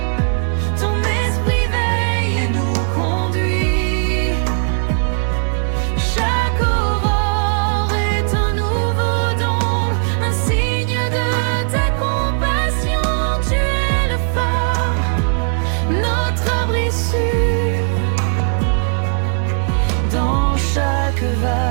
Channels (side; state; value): left; silent; 68 dB below the other